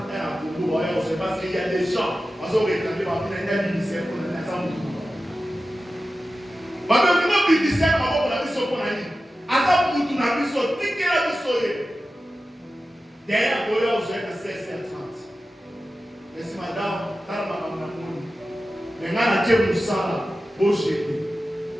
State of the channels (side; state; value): both; normal; correlation 0.94